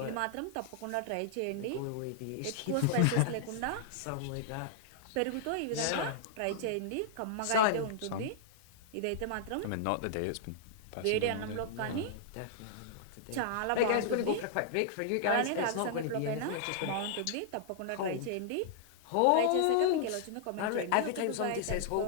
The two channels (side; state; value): both; different; correlation -0.01